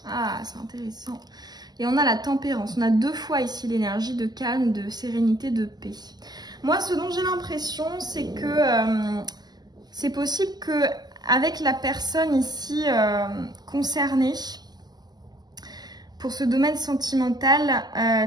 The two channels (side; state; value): left; late; 0.20 ms